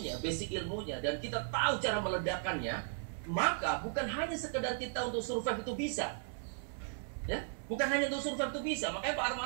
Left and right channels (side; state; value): left; silent; 54 dB below the other